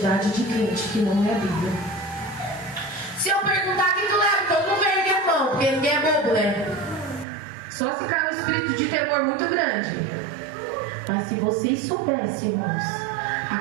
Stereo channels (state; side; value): drops out; left; at 7.2 s